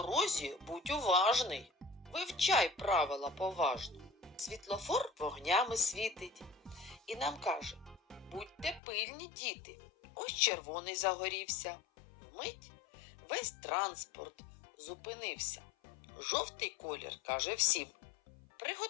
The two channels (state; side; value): drops out; right; at 8.8 s